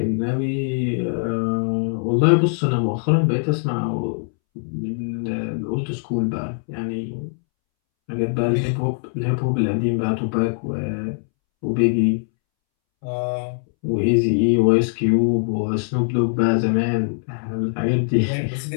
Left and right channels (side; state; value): right; silent; 64 dB below the other